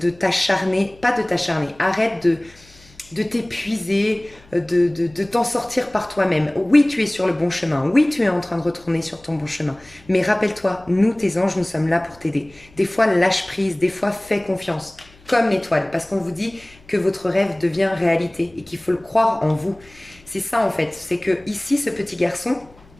t'acharner, pas de t'acharner, arrête de t'épuiser, de t'en sortir par toi-même. Oui, tu es sur le bon chemin. Oui, tu es en train de retourner sur ton bon chemin. Mais rappelle-toi, nous, tes anges, nous sommes là pour t'aider. Des fois, lâche prise. Des fois, fais confiance. comme l'étoile, parce qu'on vous dit que votre rêve devient réalité et qu'il faut le croire en vous. C'est ça en fait, c'est que ici, ce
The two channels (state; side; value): noise; left; hum, 27 dB below the sound